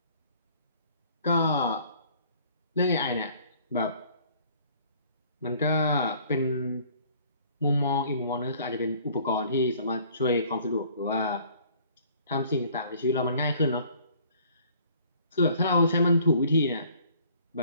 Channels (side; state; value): both; inverted; correlation -0.56